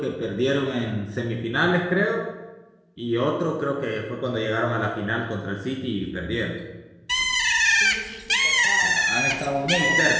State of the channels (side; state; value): both; identical; correlation 1.00